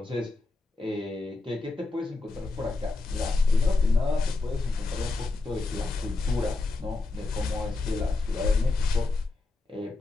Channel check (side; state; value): right; quieter; 3.5 dB